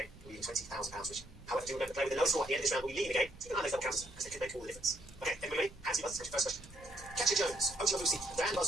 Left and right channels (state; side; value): noise; right; rumble, 21 dB below the sound